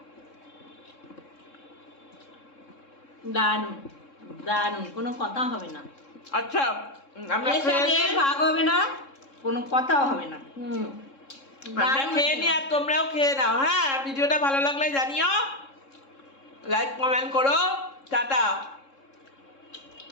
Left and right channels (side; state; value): right; late; 3.7 ms